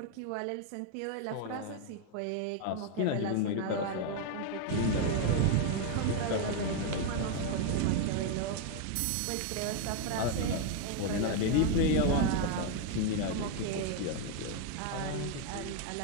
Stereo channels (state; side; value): different; both; correlation 0.00